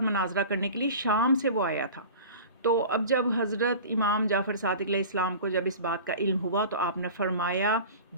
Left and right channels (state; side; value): inverted; both; correlation -0.38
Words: مناظرہ کرنے کے لیے شام سے وہ آیا تھا۔ تو اب جب حضرت امام جعفر صادق علیہ السلام کو جب اس بات کا علم ہوا تو آپ نے فرمایا